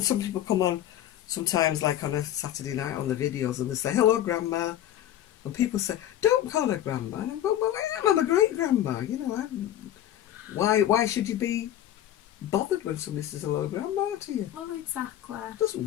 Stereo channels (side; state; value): right; quieter; 11.9 dB